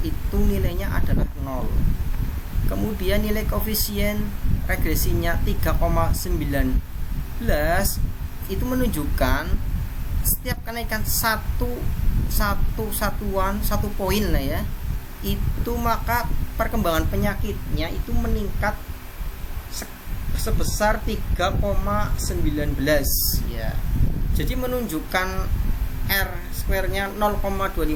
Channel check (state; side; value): identical; both; correlation 1.00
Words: itu nilainya adalah 0. Kemudian nilai koefisien regresinya 3,19 itu menunjukkan setiap kenaikan satu poin lah ya, itu maka perkembangan penyakitnya itu meningkat sebesar 3,19 ya. Jadi menunjukkan R square-nya 0,258